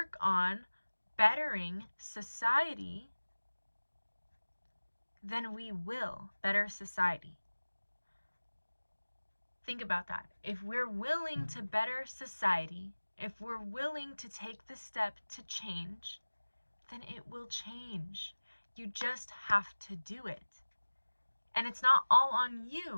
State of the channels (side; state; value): both; inverted; correlation -1.00